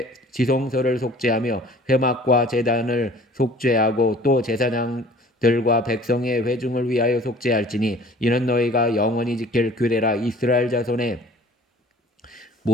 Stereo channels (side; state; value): both; normal; correlation 0.49